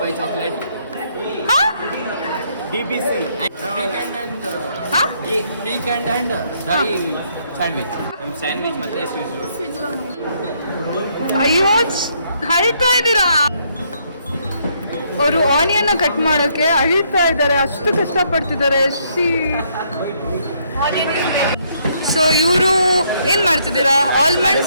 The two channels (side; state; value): both; inverted; correlation -0.71